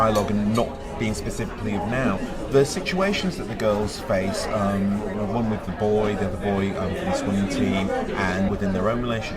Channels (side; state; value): both; identical; correlation 1.00